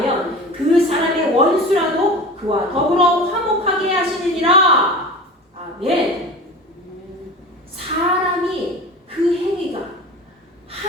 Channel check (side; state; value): both; normal; correlation 0.34